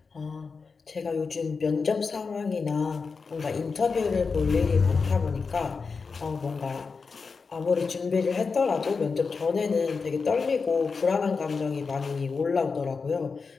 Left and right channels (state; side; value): quieter; right; 4.9 dB